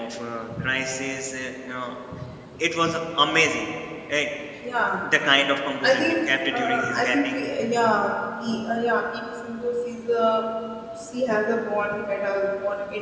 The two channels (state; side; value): identical; both; correlation 1.00